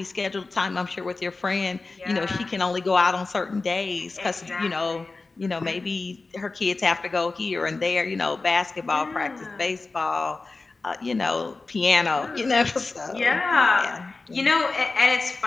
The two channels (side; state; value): right; quieter; 3.7 dB